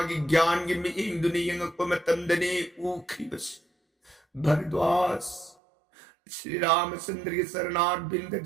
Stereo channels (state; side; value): drops out; left; at 5.6 s